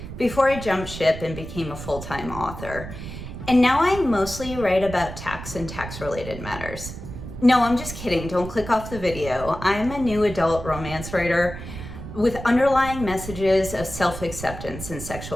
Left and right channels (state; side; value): noise; right; rumble, 10 dB below the sound